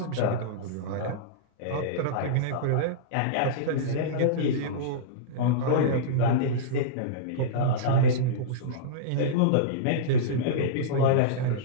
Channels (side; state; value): both; different; correlation -0.04